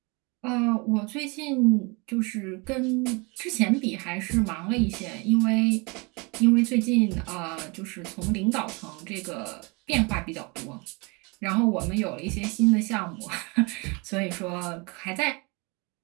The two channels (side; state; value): left; quieter; 29.1 dB